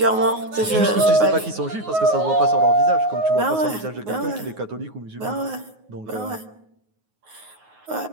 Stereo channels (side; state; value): left; late; 9.5 ms